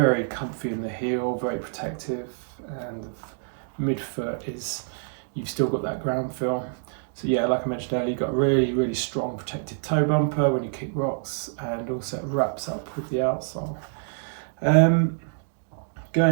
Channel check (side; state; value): left; silent; digital silence